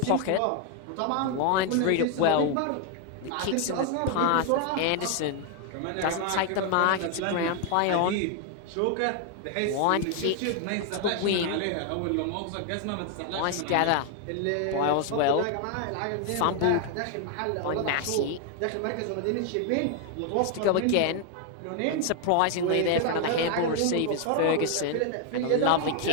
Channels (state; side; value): different; both; correlation 0.00